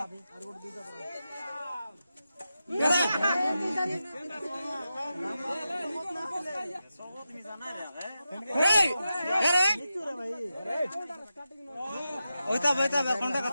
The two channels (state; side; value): inverted; both; correlation -0.90